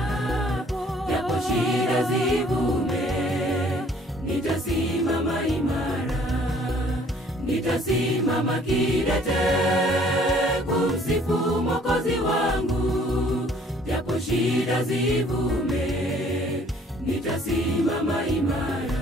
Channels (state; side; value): normal; both; correlation 0.58